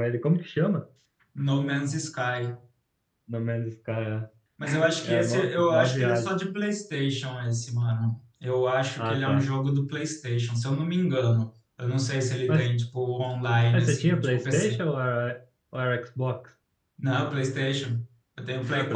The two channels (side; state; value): both; identical; correlation 1.00